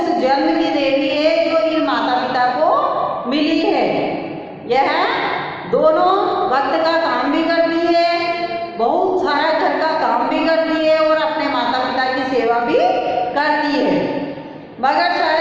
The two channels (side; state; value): both; identical; correlation 1.00